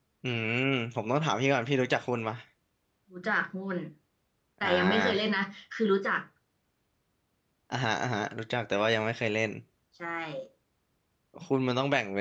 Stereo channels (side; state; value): both; identical; correlation 1.00